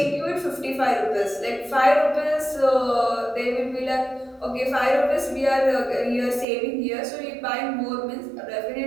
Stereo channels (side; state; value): left; drops out; at 6.5 s